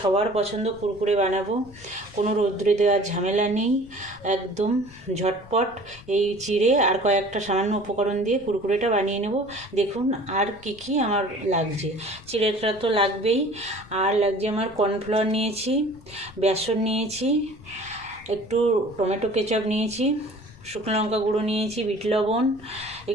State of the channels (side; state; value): left; noise; rumble, 22 dB below the sound